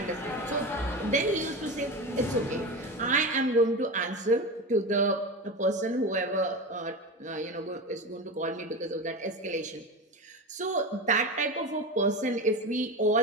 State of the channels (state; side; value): normal; both; correlation 0.24